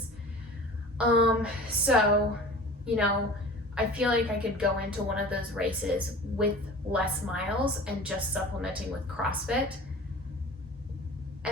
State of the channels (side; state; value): both; normal; correlation 0.40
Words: So, I feel like I could go into one of those races with less miles and just supplementing with CrossFit.